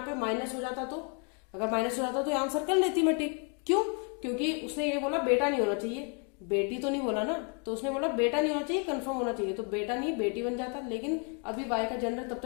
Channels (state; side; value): quieter; right; 38.3 dB